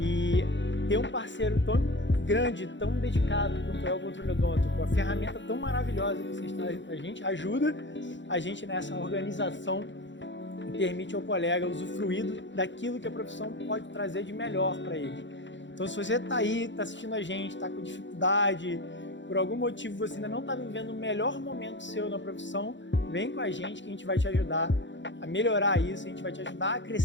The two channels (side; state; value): right; late; 0.54 ms